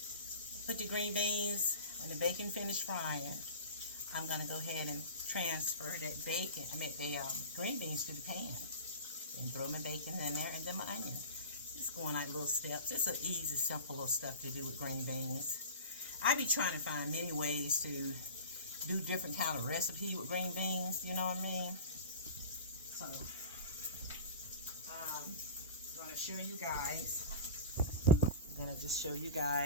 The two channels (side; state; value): both; inverted; correlation -0.33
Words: put the green beans, when the bacon finished frying, I'm going to go ahead and transfer that bacon, the green beans to the pan. And throw my bacon in there and then my onion. Just going like little steps. It's an easy, simple little stuff to do with green beans. I be trying to find many ways to do different kind of recipe with green beans, you know what I mean? So, I'm going to show you guys. I'm going to just show you